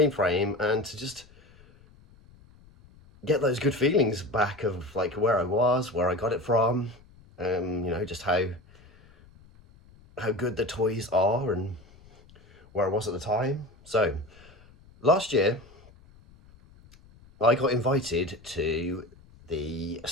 frame and to just get those good feelings back of like where I was, where I got it from, you know, just how good the toys are and where I was at the time. So last year I got invited to the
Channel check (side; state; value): left; noise; rumble, 25 dB below the sound